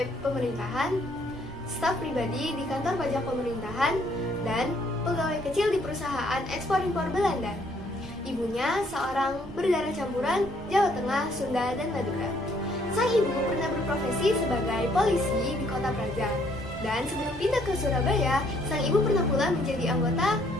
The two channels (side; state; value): both; normal; correlation 0.66